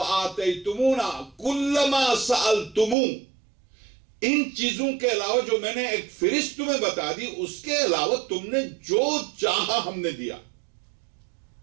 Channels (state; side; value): drops out; left; at 3.0 s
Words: كُلَّ مَا سَأَلْتُمُونَ، ان چیزوں کے علاوہ جو میں نے ایک فہرست تمہیں بتا دی، اس کے علاوہ تم نے جو چاہا ہم نے دیا۔